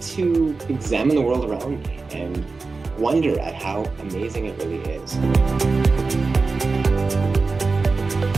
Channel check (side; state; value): left; quieter; 4.0 dB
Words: to examine the world around me and wonder at how amazing it really is.